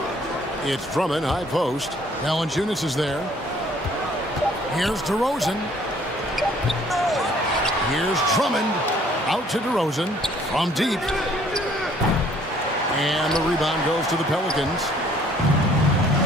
It's Drummond, high post. Valanciunas is there. Here's DeRozan. Here's Drummond. Out to DeRozan. From deep. And the rebound goes to the Pelicans.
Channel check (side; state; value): both; normal; correlation 0.59